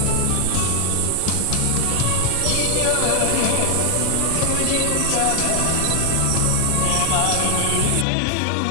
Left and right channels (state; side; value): different; both; correlation 0.00